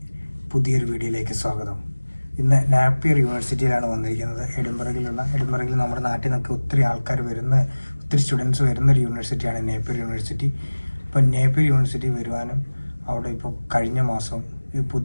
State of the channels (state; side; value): inverted; both; correlation -1.00